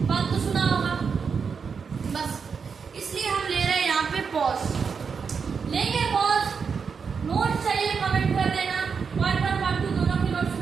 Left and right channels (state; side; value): quieter; left; 5.8 dB